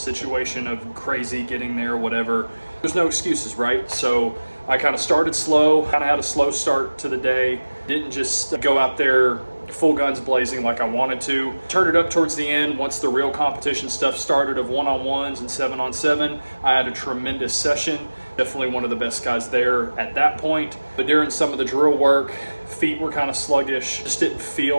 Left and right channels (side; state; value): both; inverted; correlation -1.00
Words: of crazy getting there, whatever. There's no excuses, right? So I kind of started slow, kind of had a slow start to the day. Didn't just go out there full guns blazing like I wanted to. Turned it up towards the end. Once the real competition stuff started of one-on-ones and 7-on-7, I had a tremendous session. Definitely one of the best guys there at that point. But during some of the drill work, feet were kind of sluggish. Just didn't